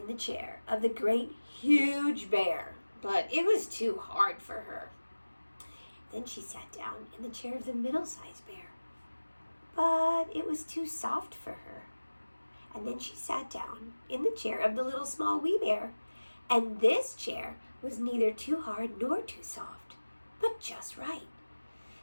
the chair of the great huge bear, but it was too hard for her. Then she sat down in the chair of the middle-sized bear, but it was too soft for her. And then she sat down in the chair of the little small wee bear, and this chair was neither too hard nor too soft, but just right.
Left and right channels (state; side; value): inverted; both; correlation -1.00